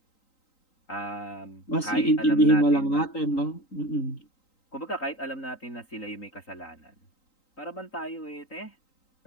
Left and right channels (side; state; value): right; late; 3.9 ms